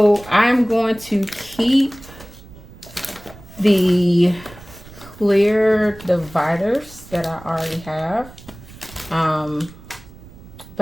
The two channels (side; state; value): right; noise; rumble, 19 dB below the sound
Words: I'm going to keep the clear dividers that I already have.